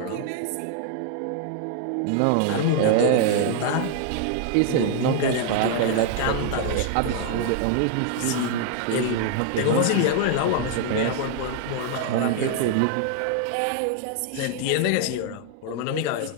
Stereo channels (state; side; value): different; both; correlation 0.00